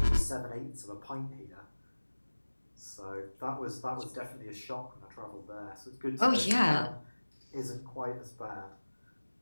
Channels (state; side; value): inverted; both; correlation -1.00